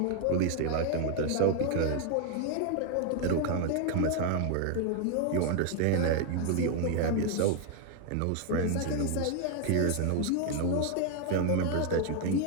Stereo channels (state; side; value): different; both; correlation 0.01